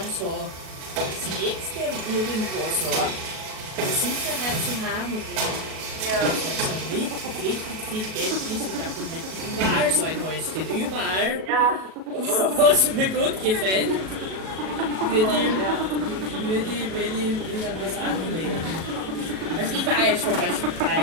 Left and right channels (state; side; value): late; left; 37 ms